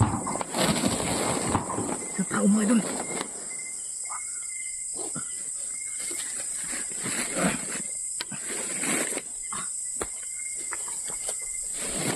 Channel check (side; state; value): both; identical; correlation 1.00